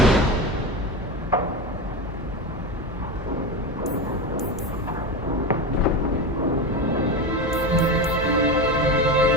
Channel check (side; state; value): both; normal; correlation 0.21